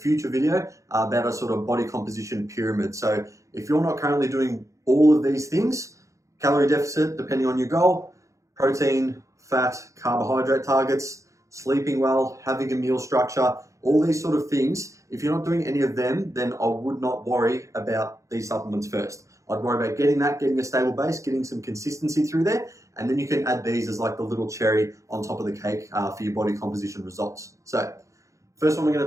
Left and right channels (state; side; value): late; left; 0.15 ms